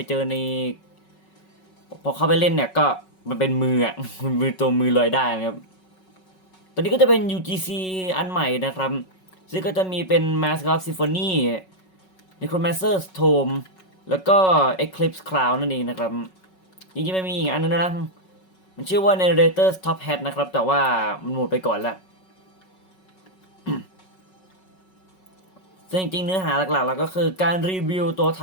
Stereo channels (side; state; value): right; late; 5.4 ms